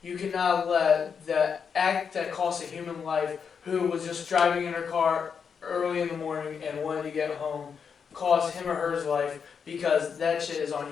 you cannot let the act that cost a human life, who was just driving in her car early in the morning and wanted to get home, cost him or her life, because that shit is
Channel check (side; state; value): right; quieter; 6.5 dB